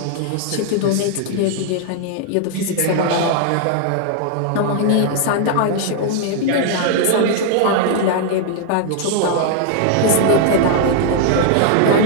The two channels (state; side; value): different; both; correlation 0.00